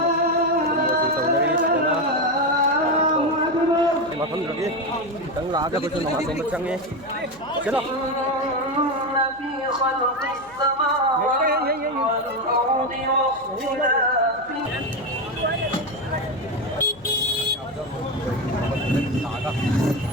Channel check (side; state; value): left; noise; hum, 25 dB below the sound